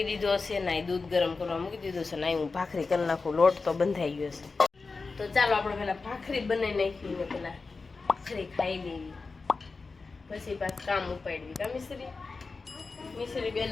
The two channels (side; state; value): right; quieter; 4.2 dB